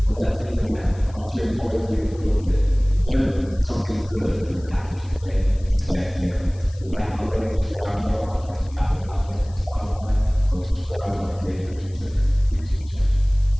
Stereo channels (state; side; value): noise; left; hiss, 26 dB below the sound